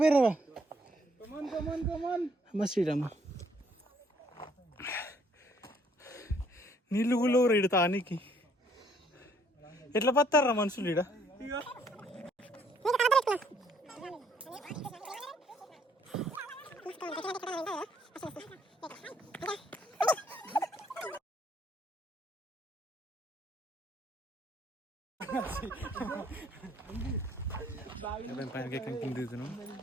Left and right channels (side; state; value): both; normal; correlation 0.65